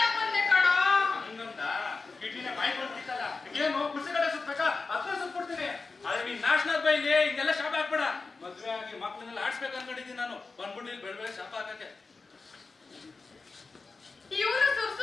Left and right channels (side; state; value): right; quieter; 4.1 dB